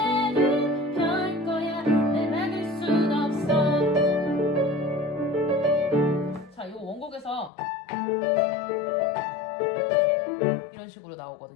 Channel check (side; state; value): right; drops out; at 7.5 s